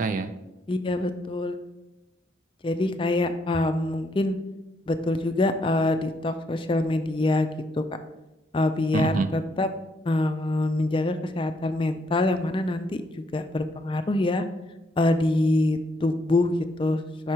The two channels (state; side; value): normal; both; correlation 0.73